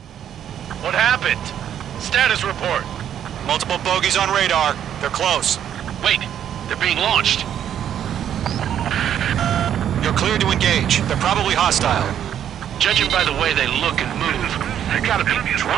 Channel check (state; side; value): quieter; left; 9.9 dB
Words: What happened? Status report. Multiple bogies on radar. They're close. Wait, they're being launched. You're cleared to engage. They're probably hostile. Judging by the way they look and move, they gotta be